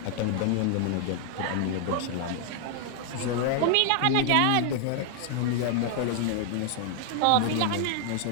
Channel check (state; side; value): different; both; correlation 0.00